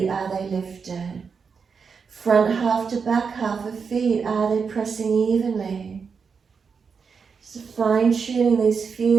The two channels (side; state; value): left; quieter; 5.7 dB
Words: are they lifted? Front half to back half of feet, are they pressing evenly? So fine-tuning these